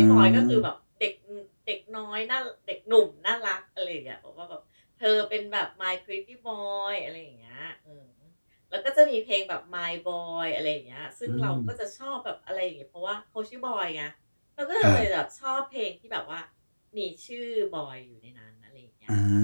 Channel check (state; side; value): inverted; both; correlation -1.00